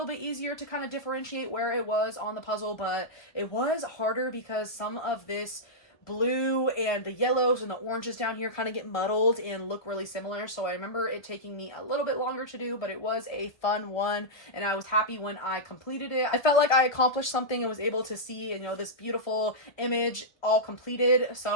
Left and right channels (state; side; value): late; right; 1.3 ms